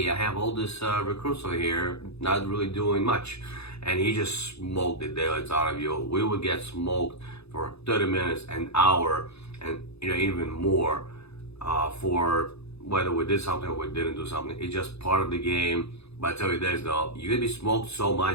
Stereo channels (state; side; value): late; right; 0.79 ms